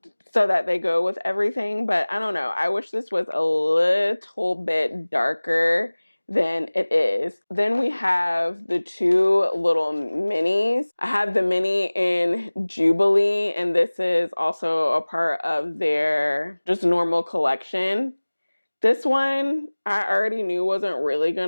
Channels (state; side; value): inverted; both; correlation -1.00